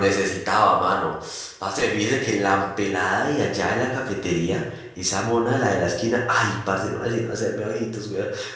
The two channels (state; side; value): identical; both; correlation 1.00